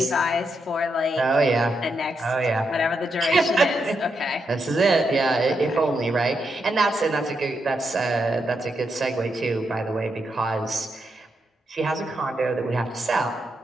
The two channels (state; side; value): normal; both; correlation 0.82